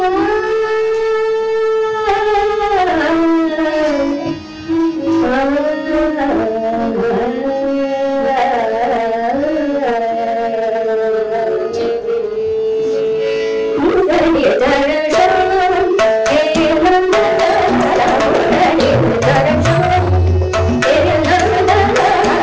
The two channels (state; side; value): identical; both; correlation 1.00